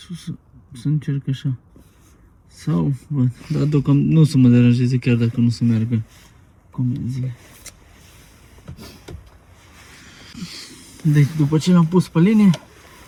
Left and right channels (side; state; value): both; identical; correlation 1.00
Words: Să încerc așa. Sau, văd, dar deocamdată nu o să mă deranjeze chiar dacă nu se meargă comenzile. Deci după ce l-am pus pe linie,